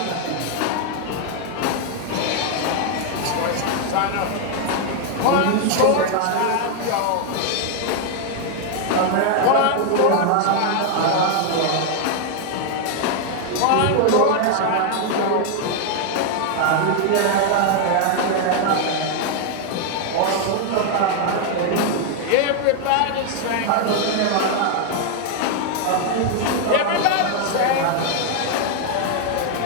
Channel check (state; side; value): different; both; correlation 0.00